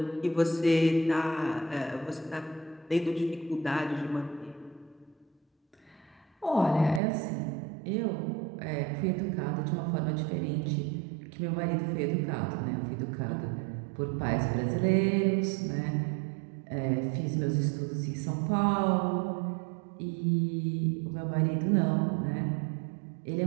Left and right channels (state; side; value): drops out; left; at 7.0 s